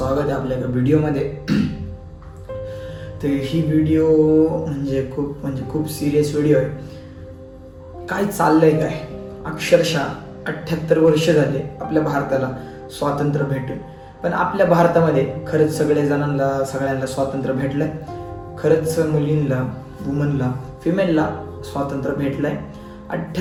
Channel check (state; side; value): identical; both; correlation 1.00